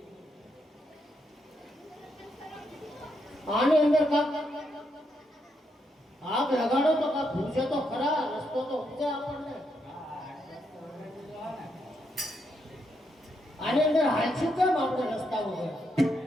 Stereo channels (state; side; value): normal; both; correlation 0.79